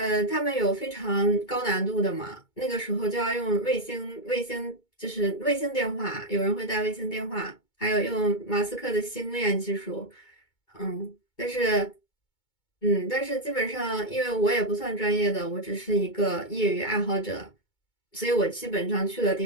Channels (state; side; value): late; right; 2.2 ms